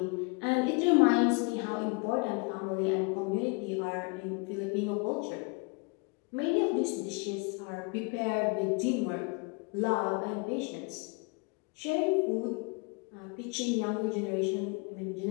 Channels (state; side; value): quieter; right; 31.5 dB